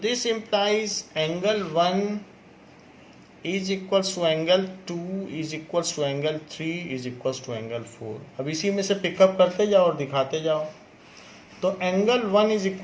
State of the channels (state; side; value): identical; both; correlation 1.00